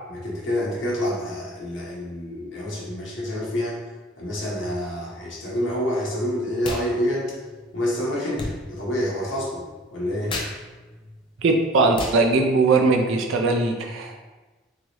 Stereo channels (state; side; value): normal; both; correlation 0.44